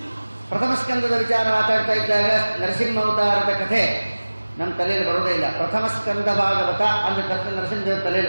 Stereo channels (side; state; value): both; inverted; correlation -1.00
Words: ಪ್ರಥಮಸ್ಕಂದದ ವಿಚಾರ ಮಾತಾಡ್ತಾ ಇದ್ದಾಗ ನರಸಿಂಹಾವತಾರದ ಕಥೆ ನಮ್ಮ ತಲೆಯಲ್ಲಿ ಬರೋದೇ ಇಲ್ಲ. ಪ್ರಥಮಸ್ಕಂದ ಭಾಗವತ ಅಂದ ತಕ್ಷಣ ನರಸಿಂಹದೇವರ